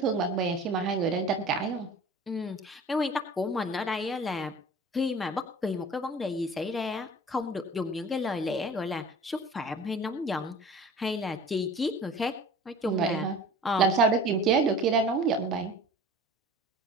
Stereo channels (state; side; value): normal; both; correlation 0.43